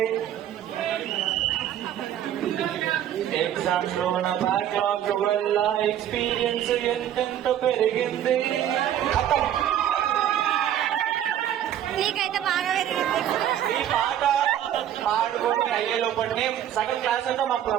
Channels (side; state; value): left; quieter; 10.8 dB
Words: exams లో నా backlog వల్ల ఎక్స్పీరియన్స్ ఎంతెంత పెరిగింది. నీకైతే బాగా పెరిగింది. ఈ పాట పాడుకొని అయ్యే లోపలనే సగం క్లాస్ అంతా మా